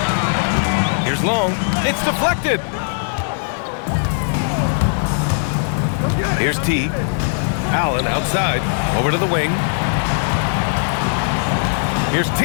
Here's Long. It's deflected. Here's T. Allen outside. Over to the wing. Here's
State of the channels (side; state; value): right; silent; digital silence